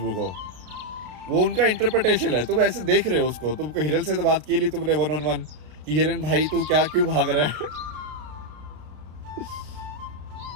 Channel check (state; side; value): late; left; 33 ms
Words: को। वो उनका इंटरप्रिटेशन है। तुम ऐसे देख रहे हो उसको, तुमको हिरन से तो बात की ली तुमने 1-on-1 कि हिरन भाई तू क्यों भाग रहा है?